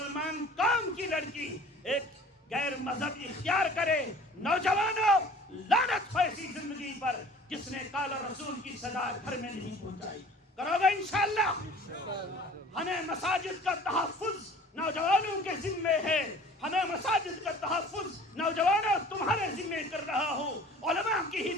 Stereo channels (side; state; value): both; normal; correlation 0.48